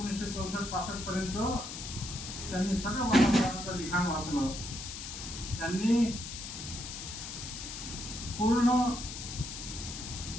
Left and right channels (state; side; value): noise; left; hiss, 8 dB below the sound